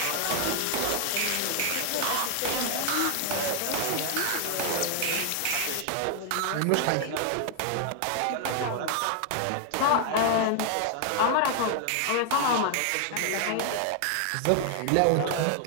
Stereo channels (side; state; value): both; different; correlation 0.00